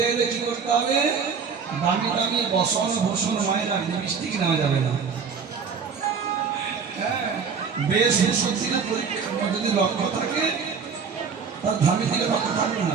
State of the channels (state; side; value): quieter; left; 6.0 dB